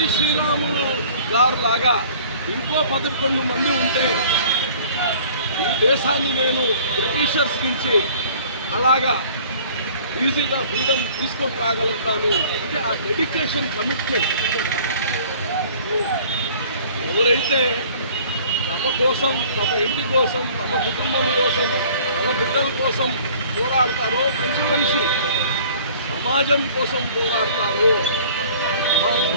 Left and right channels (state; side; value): inverted; both; correlation -0.50